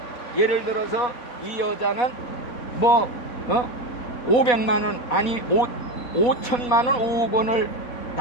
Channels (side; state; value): right; late; 4.1 ms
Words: 예를 들어서 이 여자는 500만 원 아니 5천만 원, 5억 원을